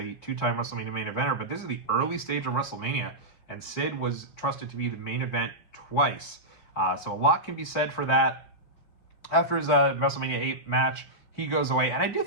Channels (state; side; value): late; right; 4.4 ms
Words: 2-time WrestleMania main eventer, but this is the early stage of WrestleMania, and Sid was trusted to be the main event twice. So a lot can be said for that. After his WrestleMania 8 match, he goes away, and I do